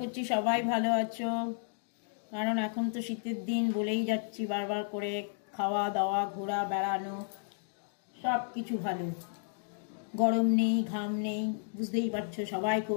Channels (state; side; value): silent; right; digital silence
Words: সবাই ভালো আছো। কারণ এখন তো শীতের দিন, বলেই যাচ্ছি বারবার করে, খাওয়া দাওয়া ঘোরা বেড়ানো সব কিছু ভালো, গরম নেই ঘাম নেই, বুঝতেই পারছো সবাই খুব